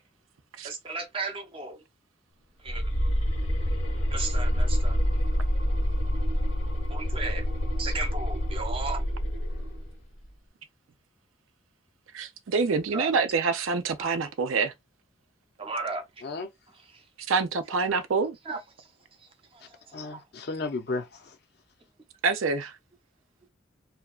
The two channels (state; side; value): normal; both; correlation 0.51